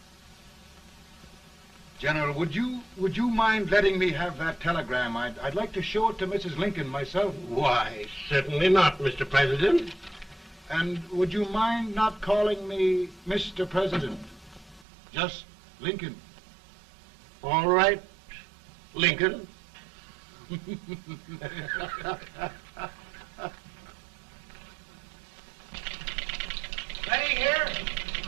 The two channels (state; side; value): drops out; left; at 14.9 s